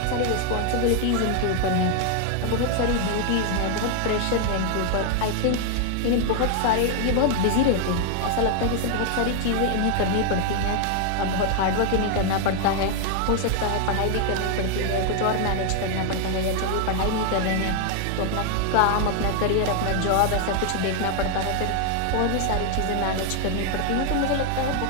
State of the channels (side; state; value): both; different; correlation 0.00